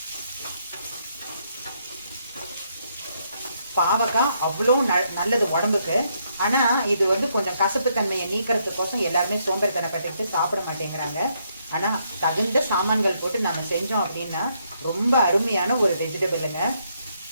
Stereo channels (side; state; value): both; inverted; correlation -0.74